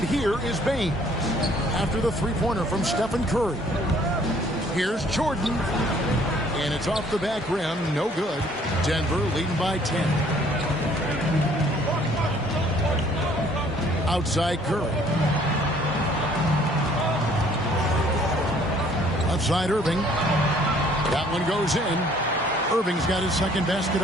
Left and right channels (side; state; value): both; normal; correlation 0.59